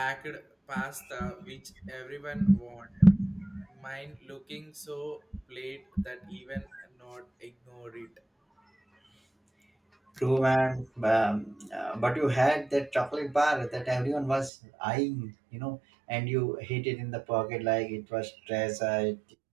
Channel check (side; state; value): left; drops out; at 14.5 s